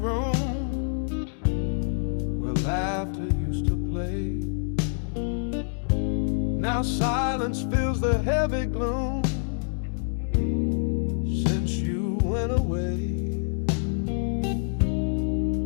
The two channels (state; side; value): silent; right; digital silence